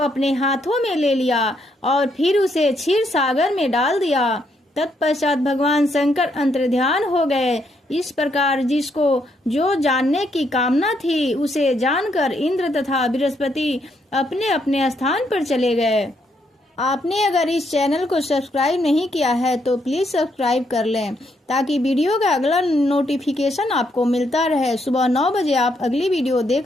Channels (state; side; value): normal; both; correlation 0.75